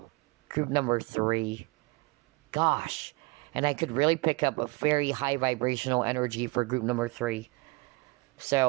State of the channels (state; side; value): quieter; left; 25.2 dB